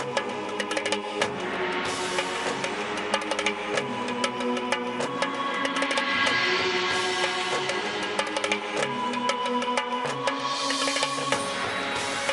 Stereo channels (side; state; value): both; identical; correlation 1.00